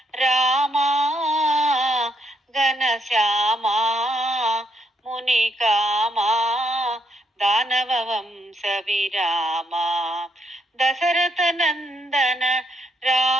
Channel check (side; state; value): both; normal; correlation 0.75